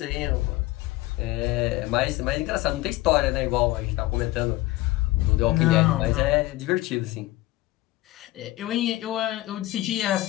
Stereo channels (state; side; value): quieter; right; 17.9 dB